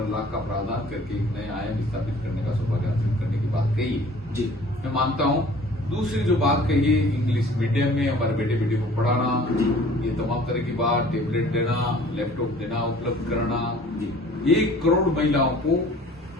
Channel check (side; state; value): both; normal; correlation 0.50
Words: लाख का प्रावधान करके एक नया आयाम स्थापित करने का सौभाग्य हासिल करने की बात कही है। जी मैं मानता हूं। दूसरी जो बात कही है, इंग्लिश मीडियम में हमारे बेटे बेटी को पढ़ाना, ये तमाम तरह की बात, टेबलेट देना, लैपटॉप देना, उपलब्ध कराना। 1 करोड़ महिलाओं को